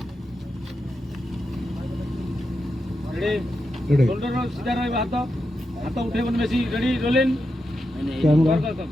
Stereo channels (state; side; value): normal; both; correlation 0.87